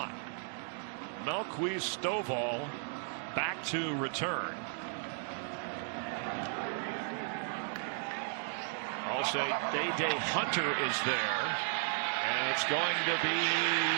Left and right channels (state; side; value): silent; left; 55 dB below the other